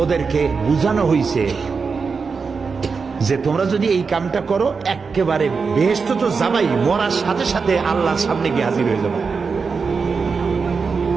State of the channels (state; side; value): quieter; left; 5.1 dB